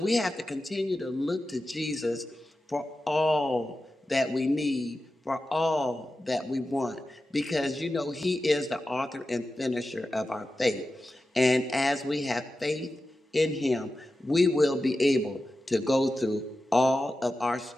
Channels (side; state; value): both; normal; correlation 0.93